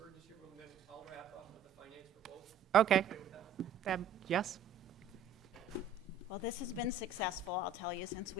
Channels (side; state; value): left; quieter; 5.1 dB